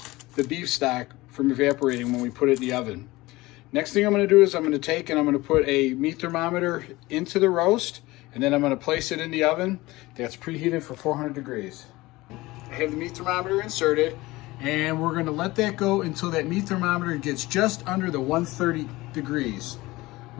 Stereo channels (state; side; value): quieter; right; 20.0 dB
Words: the beef stock from evaporating when we put it in the oven. Next thing I'm going to do is I'm going to take and I'm going to put a meat thermometer into the roast, and then I'm going to place it in the oven that's preheated for 400 degrees. I have the meat thermometer inserted, and we're going to let that go until that meat thermometer gets just under the 130 degrees.